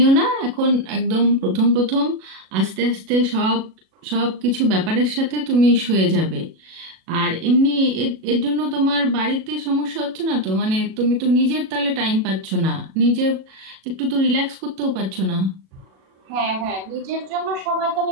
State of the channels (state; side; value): late; left; 37 ms